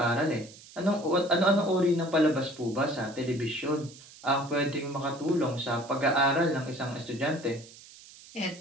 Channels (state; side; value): noise; right; hiss, 20 dB below the sound